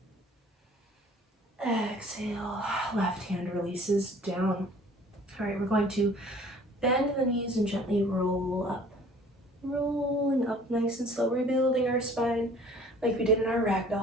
Exhale, left hand releases down. All right, we're going to bend the knees and gently roll up. Rolling up nice and slow, rebuilding our spine like we did in our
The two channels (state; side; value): normal; both; correlation 0.52